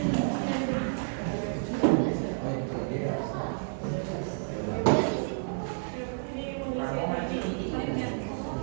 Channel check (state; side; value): silent; left; 58 dB below the other